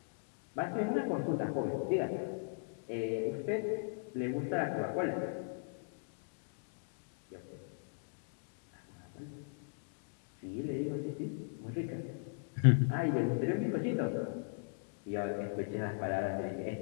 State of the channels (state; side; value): silent; right; digital silence